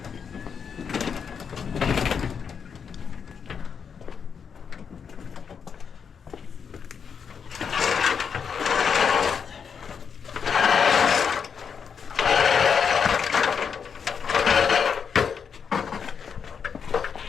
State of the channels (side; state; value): right; quieter; 6.6 dB